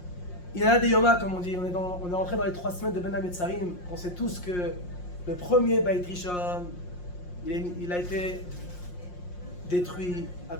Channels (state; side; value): late; right; 5.6 ms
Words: Il y en a des Yoma, comme on dit, on est rentré dans les 3 semaines de Ben Hametzarim. On sait tous que le premier Beit Rishon, il a été détruit à